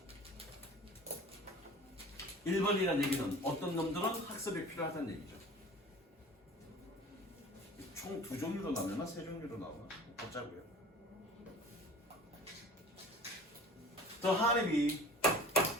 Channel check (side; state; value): both; normal; correlation 0.41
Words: 1번이라는 얘기는 어떤 놈들은 학습이 필요하다는 얘기죠. 총 두 종류로 나오나 세 종류로 나오나 보자고요. The honeybee,